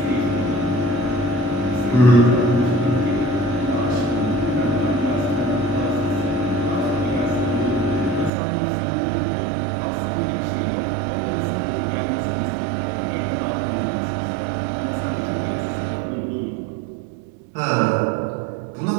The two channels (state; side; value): drops out; left; at 8.3 s